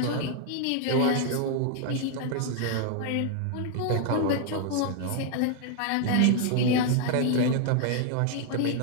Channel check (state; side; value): different; both; correlation 0.00